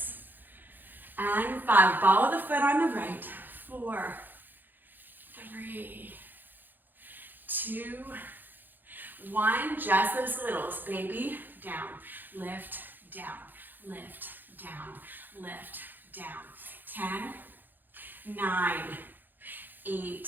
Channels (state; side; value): late; left; 0.089 ms